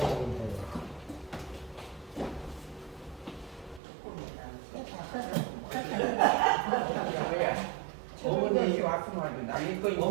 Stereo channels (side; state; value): left; drops out; at 3.8 s